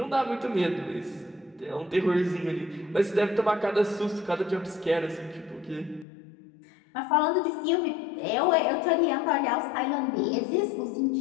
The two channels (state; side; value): drops out; right; at 6.1 s